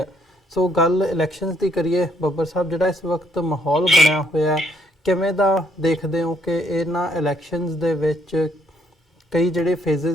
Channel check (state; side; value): normal; both; correlation 0.69